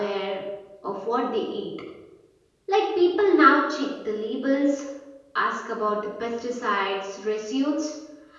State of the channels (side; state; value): both; identical; correlation 1.00